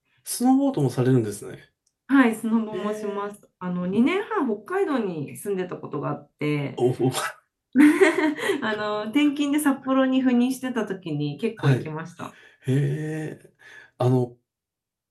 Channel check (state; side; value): identical; both; correlation 1.00